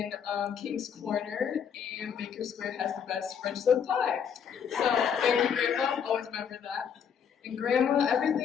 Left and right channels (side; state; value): right; quieter; 7.6 dB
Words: King's Corner, and Baker Square has the best French silk pie. So thank you, Grandma. Always remember that. And Grandma,